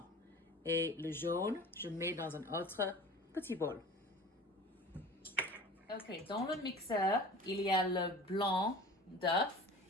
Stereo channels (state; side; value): normal; both; correlation 0.40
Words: Et le jaune, je mets dans un autre petit bol. Ok, dans le mixeur, il y a le blanc d'œuf